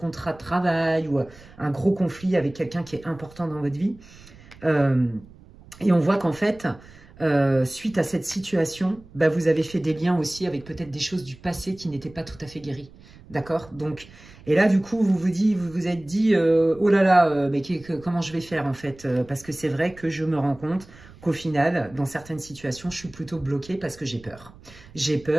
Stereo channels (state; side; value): noise; right; rumble, 22 dB below the sound